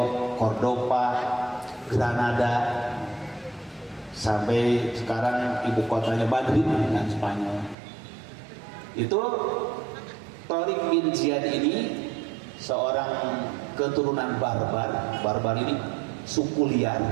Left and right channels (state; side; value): drops out; left; at 7.8 s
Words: Cordoba, Granada, sampai sekarang ibu kotanya Madrid dengan Spanyol. Itu Tariq bin Ziyad ini seorang keturunan barbar ini suku liar